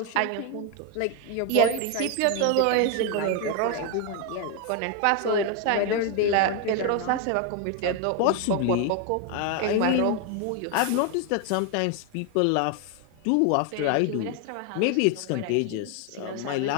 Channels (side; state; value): both; different; correlation 0.01